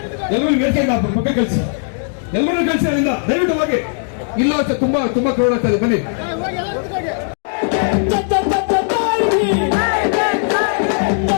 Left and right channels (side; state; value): right; silent; digital silence